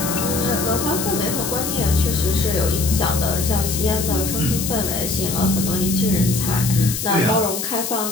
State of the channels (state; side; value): noise; left; hiss, 4 dB below the sound